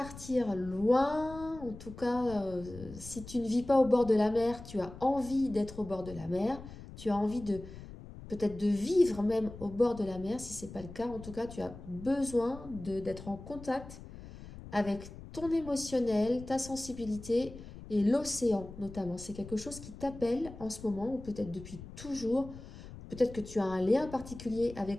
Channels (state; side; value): noise; left; rumble, 14 dB below the sound